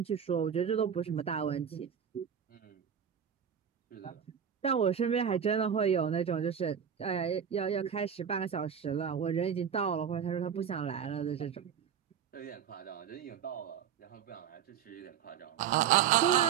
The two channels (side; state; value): left; quieter; 8.3 dB